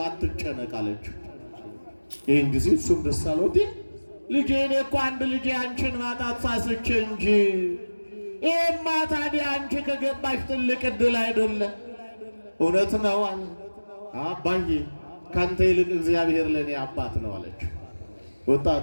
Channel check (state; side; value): inverted; both; correlation -1.00